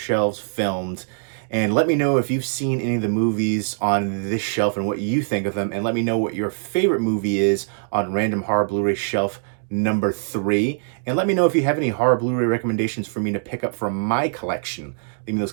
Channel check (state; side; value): silent; left; digital silence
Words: filmed. And let me know if you've seen any of the movies on this shelf and what you think of them. And let me know what your favorite movie is on Random Horror Blu-ray Shelf number 3. And let me know if you have any horror Blu-ray recommendations for me to pick up from my collection. Leave me those